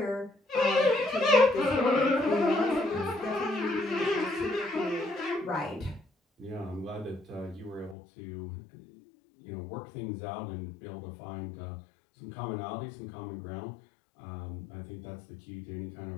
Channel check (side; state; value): right; drops out; at 8.0 s